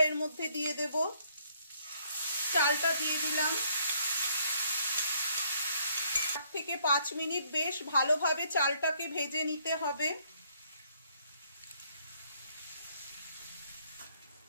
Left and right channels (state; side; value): inverted; both; correlation -0.67